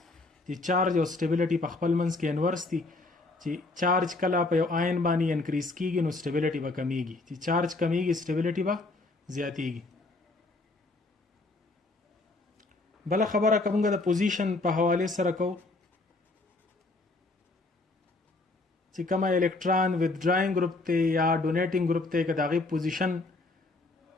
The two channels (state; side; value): quieter; right; 3.2 dB